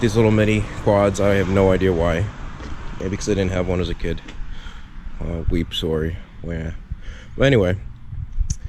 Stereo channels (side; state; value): both; identical; correlation 1.00